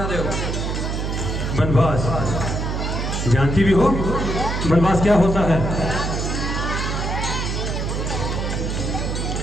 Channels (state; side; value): noise; right; hum, 2 dB below the sound